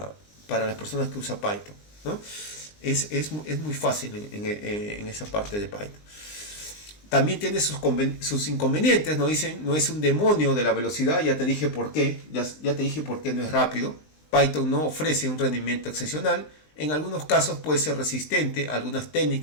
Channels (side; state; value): right; late; 19 ms